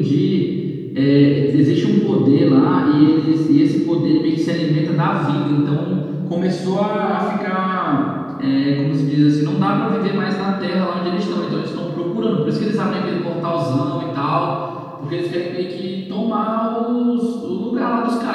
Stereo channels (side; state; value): both; identical; correlation 1.00